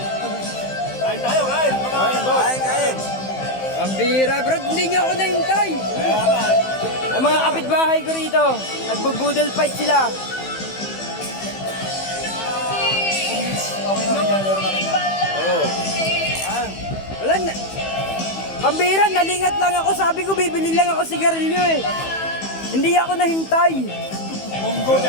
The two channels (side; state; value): right; late; 15 ms